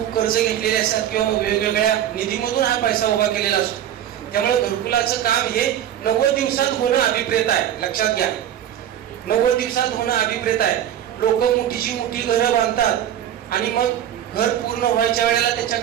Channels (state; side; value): quieter; left; 10.8 dB